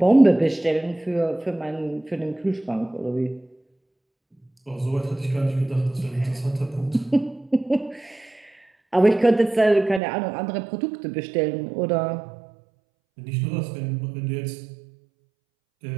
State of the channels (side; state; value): left; drops out; at 10.0 s